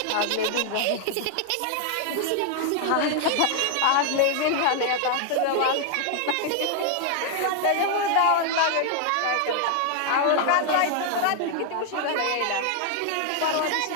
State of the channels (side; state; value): both; different; correlation 0.00